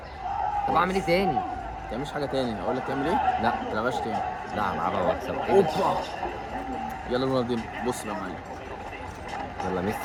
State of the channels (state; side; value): identical; both; correlation 1.00